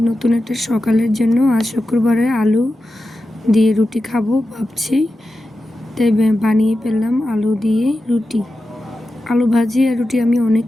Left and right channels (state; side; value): normal; both; correlation 0.91